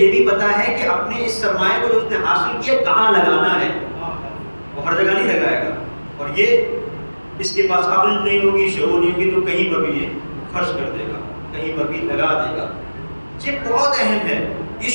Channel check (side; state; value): both; inverted; correlation -1.00